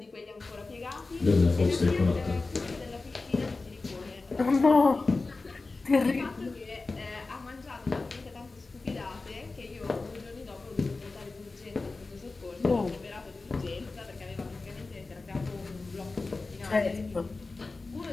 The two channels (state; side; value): quieter; right; 3.6 dB